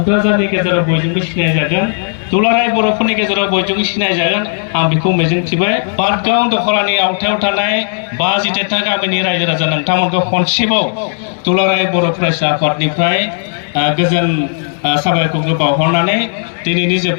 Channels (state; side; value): silent; right; digital silence